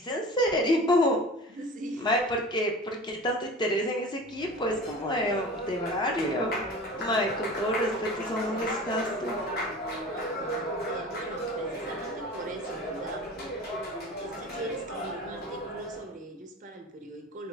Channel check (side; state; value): both; normal; correlation 0.38